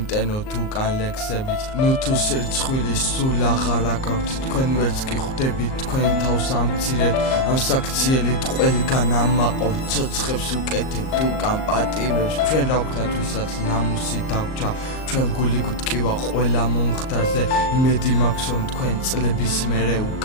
უკან ლექსებით ნუ თუ სირცხვილი სულ აღარა გაქვთ თქვენ ვერც კი ხვდებით თქვენ თავს ამცირეთ ამ საქციელით ყველგან ამაყობთ ცოცხებს უკეთებთ უკან პატიმრებს ჩვენ რა ვქნათ ვისაც ნამუსი დაგვჭა ჩვენ გული გვტკივა ყველა მომხდარზე იმედი მაქვს რომ თქვენ წლების მერე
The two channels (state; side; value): late; right; 38 ms